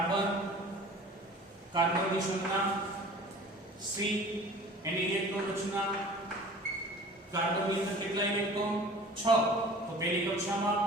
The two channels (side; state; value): both; normal; correlation 0.44